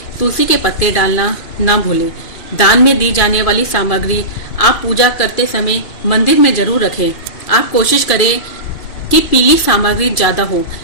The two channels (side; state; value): right; late; 2.5 ms